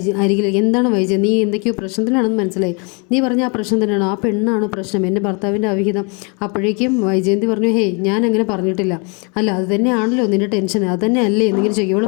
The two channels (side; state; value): right; quieter; 33.3 dB